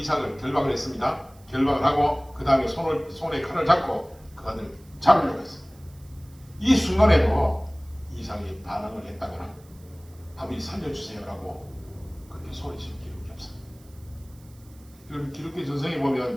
결박을 했습니다. 결박을 하고 그 다음에 손에 칼을 잡고 그 아들 잡으려고 했습니다. 이 순간에도 이삭이 반항을 했다거나 아버지 살려주세요라고 그렇게 소리친 기록이 없습니다. 그럼 기독교 전성에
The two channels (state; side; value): noise; right; hiss, 28 dB below the sound